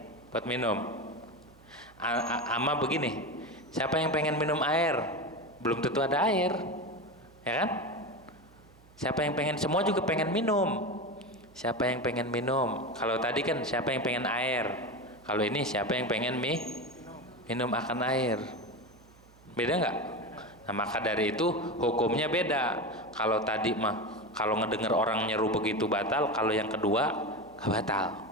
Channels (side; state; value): right; noise; hum, 26 dB below the sound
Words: buat minum. Ama begini, siapa yang pengen minum air, belum tentu ada air, ya kan? Siapa yang pengen, semua juga pengen minum. Siapa yang pengen minum? Kalau tadi kan siapa yang pengen air, kalau ini siapa yang pengen minum akan air. Beda nggak? Nah maka dari itu hukumnya beda. Kalau tadi mah kalau ngedengar orang nyeru begitu batal, kalau yang kedua nggak batal.